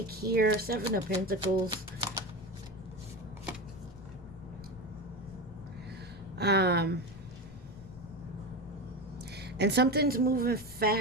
here. Seven of Pentacles. And something's moving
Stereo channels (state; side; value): noise; left; rumble, 17 dB below the sound